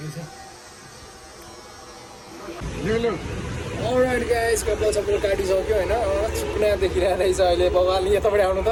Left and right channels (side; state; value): both; identical; correlation 1.00